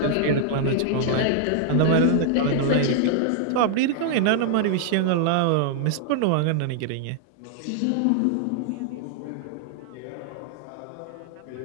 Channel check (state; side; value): different; both; correlation -0.01